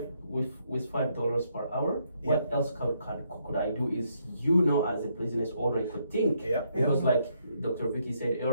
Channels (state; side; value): inverted; both; correlation -0.74